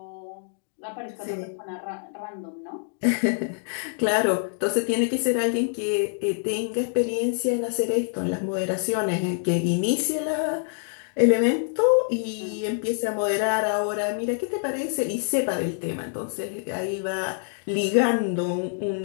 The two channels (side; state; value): right; silent; digital silence